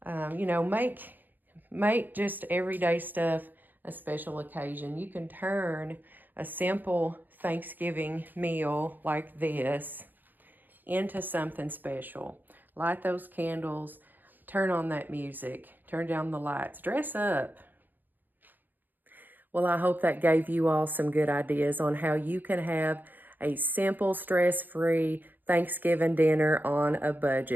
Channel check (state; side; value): late; left; 0.088 ms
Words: You know, make just everyday stuff a special occasion. You can turn a simple Thanksgiving meal like this into something special. Light those candles. Turn on that music. Turn down the lights. Dress up. Well, I hope that gave you all some good ideas on how you can have a simple, stress-free Thanksgiving dinner on a